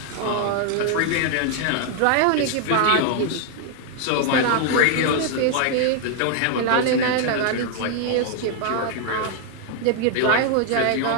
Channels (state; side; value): different; both; correlation 0.00